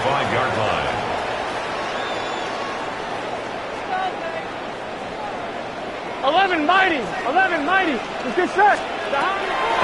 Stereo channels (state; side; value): identical; both; correlation 1.00